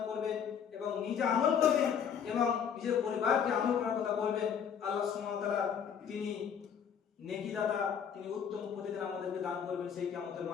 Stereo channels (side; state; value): right; quieter; 7.7 dB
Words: করবেন এবং নিজে আমল করবেন এবং নিজের পরিবারকে আমল করার কথা বলবেন। আল্লাহ সুবহানাহু ওয়া তাআলা তিনি নেকি দাতা, তিনি উত্তম প্রতিদান আমাদেরকে দান করবেন সেই কিয়ামতের